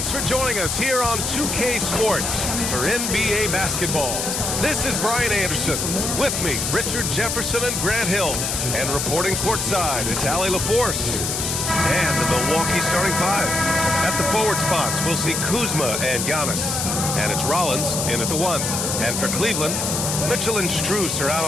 for joining us here on 2K Sports for NBA basketball. This is Brian Anderson. With me, Richard Jefferson and Grant Hill. And reporting courtside, it's Allie LaForce. And the Milwaukee starting five. At the forward spots, we'll see Kuzma and Giannis. And it's Rollins in at the one. And for Cleveland, Mitchell and Strus are out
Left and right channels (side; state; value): left; noise; hiss, 1 dB below the sound